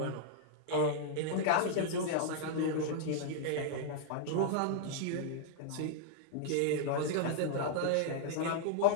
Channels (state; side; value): different; both; correlation -0.01